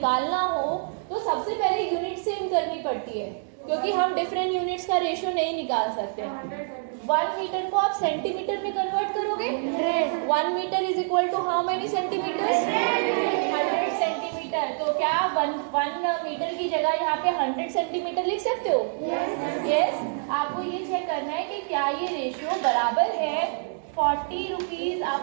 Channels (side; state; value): left; silent; digital silence